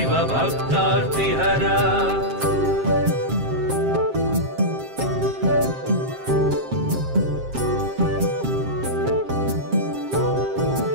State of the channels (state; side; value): late; left; 7.5 ms